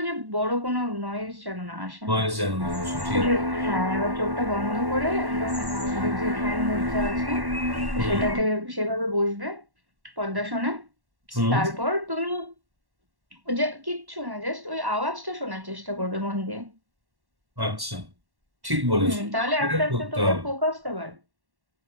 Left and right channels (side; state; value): left; late; 1.1 ms